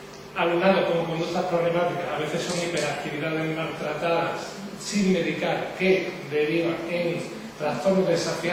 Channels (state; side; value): identical; both; correlation 1.00